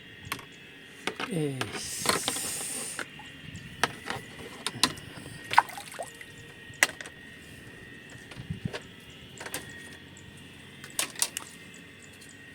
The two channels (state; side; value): identical; both; correlation 1.00